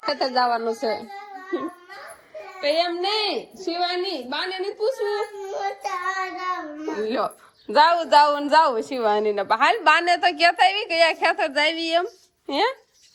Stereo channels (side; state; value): both; identical; correlation 1.00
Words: ખેતર જવાનું છે? એમ નઈ શિવાની, બા ને નહીં પૂછવું. જાવું શિવાની ને હાલ. બા ને તો કેતા આવી કયા ખેતર જાવી એમ. હે